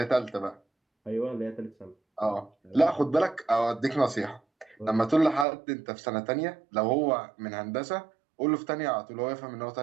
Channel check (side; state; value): left; drops out; at 5.5 s